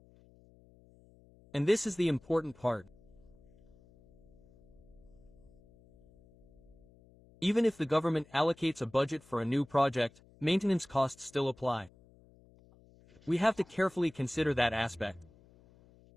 And this is the important part. Even if the government allocates a budget for a new project, maintenance costs still apply. We have to carefully consider that aspect.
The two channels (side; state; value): left; noise; hum, 27 dB below the sound